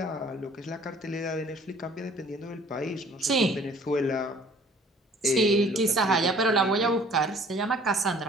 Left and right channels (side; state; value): both; normal; correlation 0.54